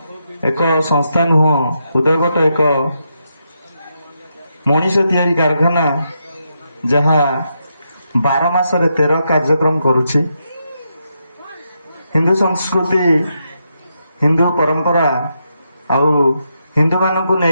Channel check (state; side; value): inverted; both; correlation -0.82